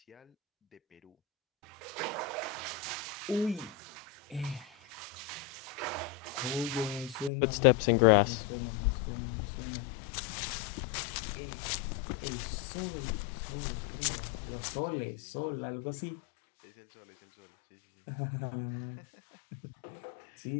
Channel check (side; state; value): right; drops out; at 7.3 s